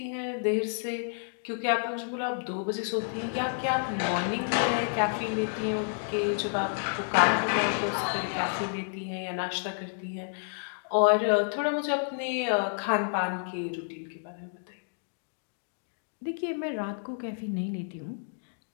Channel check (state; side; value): silent; right; digital silence